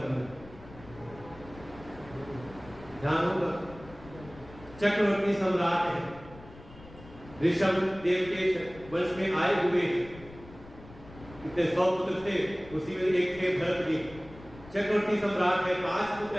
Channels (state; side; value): noise; left; rumble, 19 dB below the sound